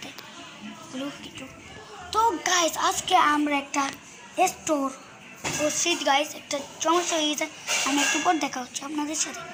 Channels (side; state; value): both; identical; correlation 1.00